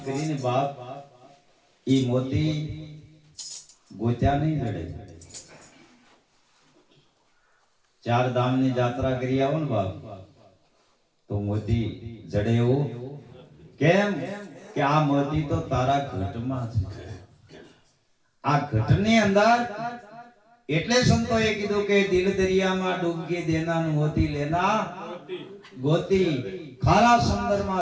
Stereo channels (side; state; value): both; identical; correlation 1.00